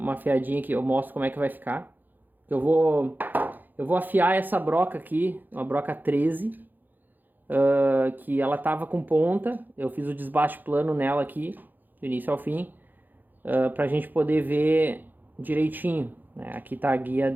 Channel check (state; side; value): late; left; 0.087 ms